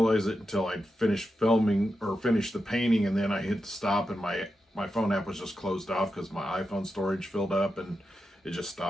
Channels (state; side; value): normal; both; correlation 0.89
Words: it until I finished filming or finished the painting, and then I hit stop and my phone app was just closed off because my iPhone storage filled up and it just